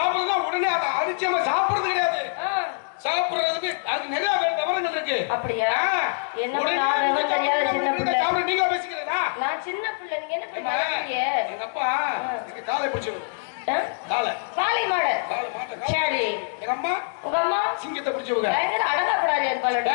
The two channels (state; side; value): silent; right; digital silence